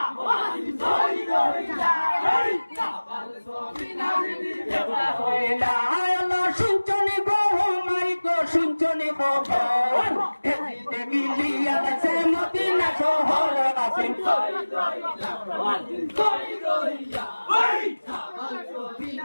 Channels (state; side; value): inverted; both; correlation -1.00